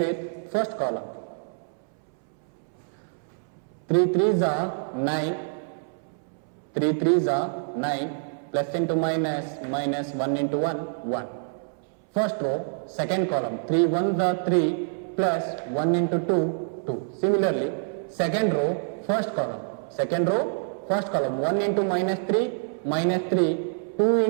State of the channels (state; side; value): silent; left; 61 dB below the other